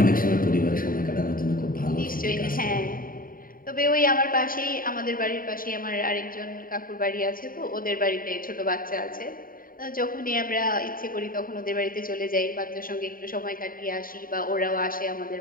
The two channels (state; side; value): late; right; 0.41 ms